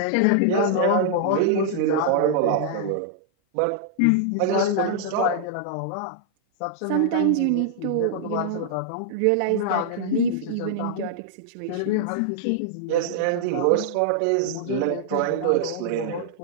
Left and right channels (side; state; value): both; different; correlation -0.01